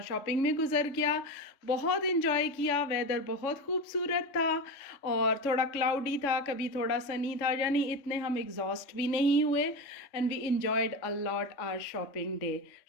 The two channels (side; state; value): right; late; 3.4 ms